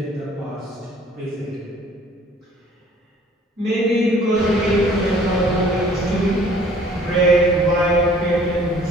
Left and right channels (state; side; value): normal; both; correlation 0.55